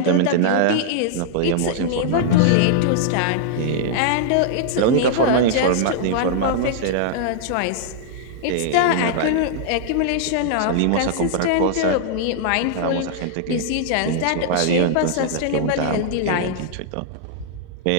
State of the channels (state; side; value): different; both; correlation -0.01